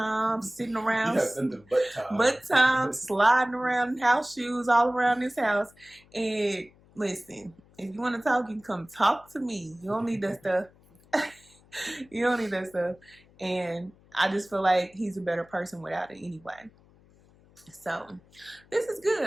sitting around. Nothing but time. But time, sliding around house shoes all around this house. And listen, if you want to talk, you can come talk to me. You don't need that stuff. You don't need that stuff. And I just feel like he's a better person without it anyway. So this is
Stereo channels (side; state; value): left; noise; hum, 28 dB below the sound